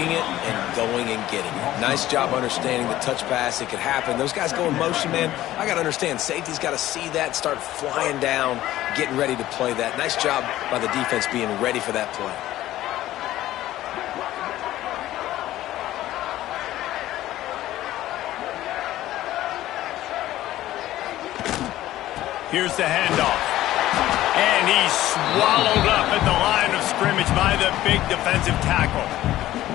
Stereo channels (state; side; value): quieter; right; 14.6 dB